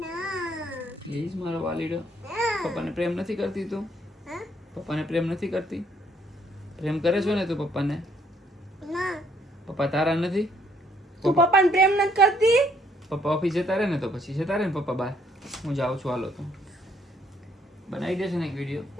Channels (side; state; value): both; normal; correlation 0.67